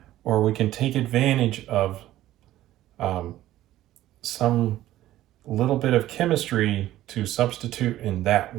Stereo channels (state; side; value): quieter; left; 14.3 dB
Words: or we can take advantage of some little bit of chemistry to substitute in that